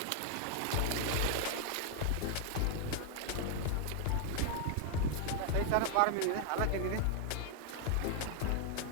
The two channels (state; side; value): different; both; correlation 0.00